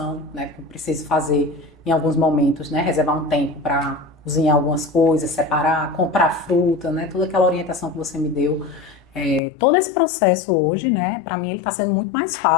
né? Que eu preciso fazer em alguns momentos, né? Reservar um tempo para cozinhar algumas coisas, separar, comprar fruta, né? Toda aquela orientação que você me deu. Todo esse processo hoje, né? Para mim ele está sendo muito mais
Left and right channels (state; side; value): drops out; right; at 9.4 s